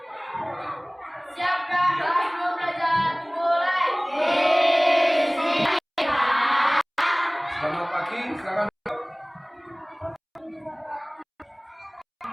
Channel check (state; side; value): identical; both; correlation 1.00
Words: Siap dah, kelas mau belajar mulai. Selamat pagi, silakan.